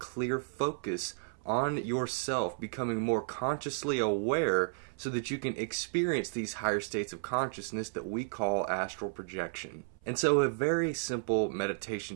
focus on yourself, becoming more consciously aware so that you can experience these higher states of consciousness that we call astral projection. And so a very simple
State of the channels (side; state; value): left; silent; 56 dB below the other